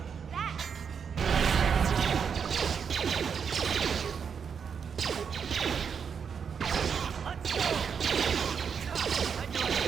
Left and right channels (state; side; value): quieter; left; 6.7 dB